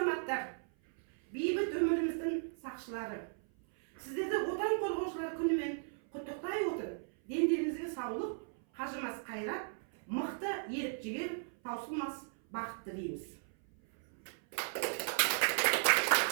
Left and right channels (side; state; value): left; silent; 54 dB below the other